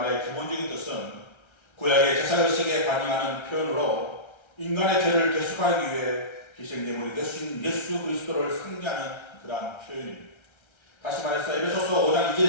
기본적인 뜻은 구약의 제사의식에 반영하는 표현으로 인간의 죄를 대속하기 위해 희생제물이 되신 예수 그리스도를 상징하는 그러한 표현입니다. 다시 말해서 에베소서 5장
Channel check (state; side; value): late; right; 1.3 ms